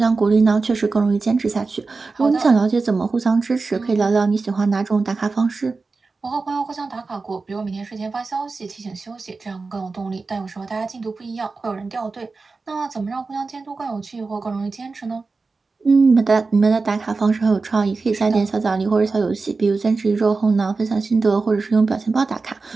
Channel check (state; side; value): quieter; left; 4.0 dB